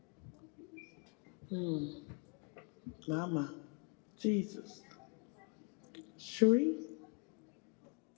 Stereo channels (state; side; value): quieter; right; 35.3 dB